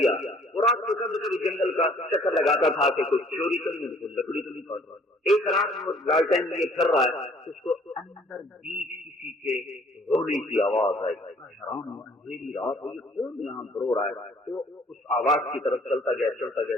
وہ رات کو کبھی کبھی جنگل کا چکر لگاتا تھا کہ کچھ چوری تو نہیں، کچھ لکڑی تو نہیں کاٹ رہا۔ ایک رات وہ لالٹین لیے پھر رہا ہے، اس کو اندر بیچ کسی کے رونے کی آواز آئی، حیران ہوا، اندھیری رات ہوئی، کون یہاں رو رہا ہے؟ تو اس آواز کی طرف چلتا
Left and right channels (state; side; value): normal; both; correlation 0.58